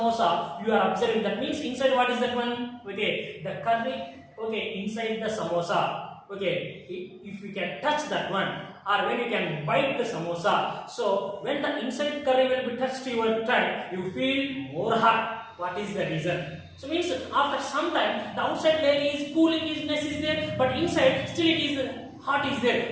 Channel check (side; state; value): both; identical; correlation 1.00